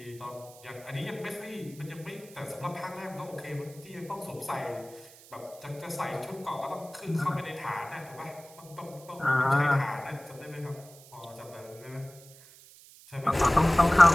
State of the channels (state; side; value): noise; right; hiss, 21 dB below the sound